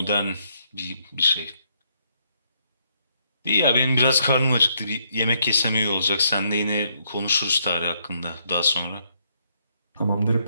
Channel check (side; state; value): both; inverted; correlation -0.74